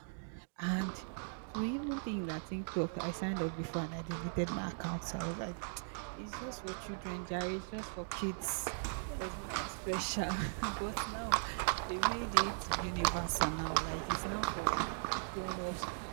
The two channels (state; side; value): silent; left; digital silence